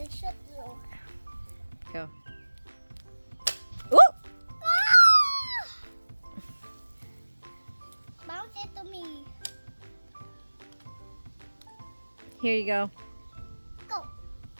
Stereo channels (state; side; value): inverted; both; correlation -1.00